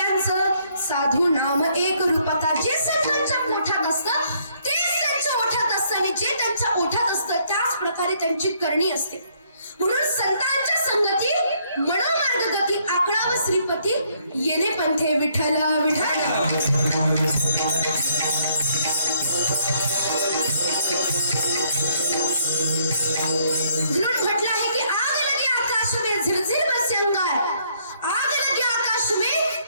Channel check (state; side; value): inverted; both; correlation -0.67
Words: साधू नाम एक रूपता. जे संतांच्या ओठात असतं तेच त्यांच्या ओठात असतं आणि जे त्यांच्या ओठात असतं त्याच प्रकारे त्यांची करणी असते. म्हणून संतांच्या संगती मनोमार्ग गती आकळाव श्रीपती येणे पंथे विठ्ठल विठ्ठल. म्हणून म्हटलं आहे की आग लगे आकाश में झिरझिर बरसे अंगार, आग लगे आकाश में